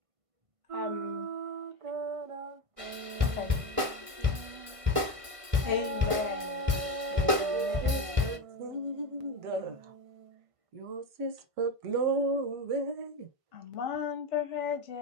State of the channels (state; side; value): late; left; 1.5 ms